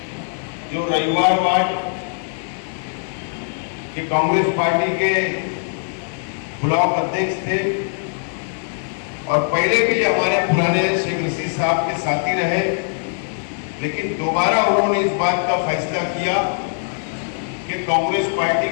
जो रविवार वार्ड के कांग्रेस पार्टी के ब्लॉक अध्यक्ष थे और पहले भी हमारे पुराने शेख रशीद साहब के साथी रहे, लेकिन दोबारा उन्होंने इस बात का फैसला किया कि कांग्रेस पार्टी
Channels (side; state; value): right; silent; digital silence